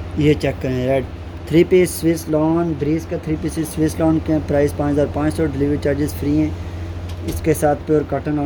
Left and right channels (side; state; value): both; identical; correlation 1.00